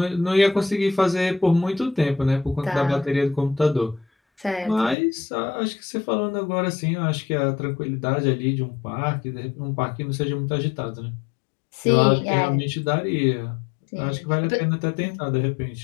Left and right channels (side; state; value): right; drops out; at 5.0 s